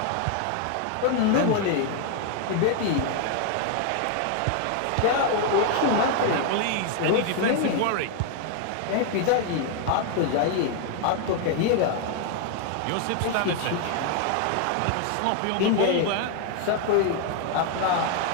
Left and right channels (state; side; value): different; both; correlation 0.00